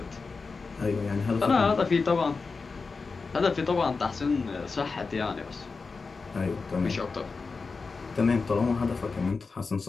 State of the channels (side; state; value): right; quieter; 4.4 dB